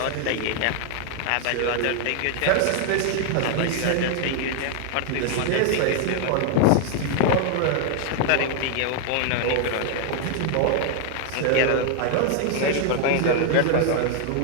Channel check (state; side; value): different; both; correlation 0.00